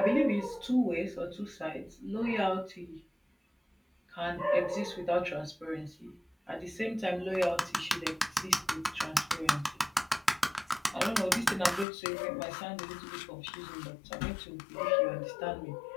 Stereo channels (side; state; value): right; drops out; at 11.9 s